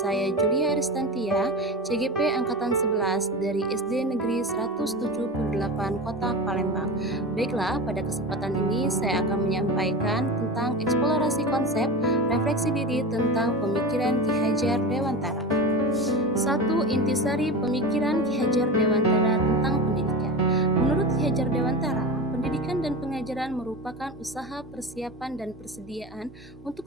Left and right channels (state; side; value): normal; both; correlation 0.26